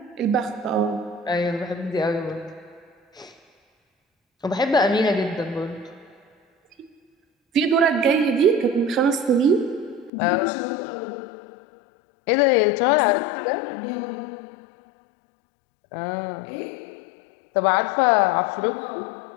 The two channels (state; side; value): drops out; right; at 10.1 s